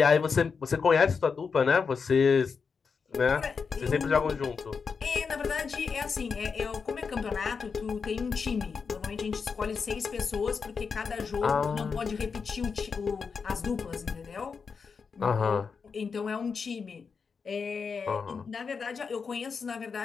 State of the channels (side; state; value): right; quieter; 5.5 dB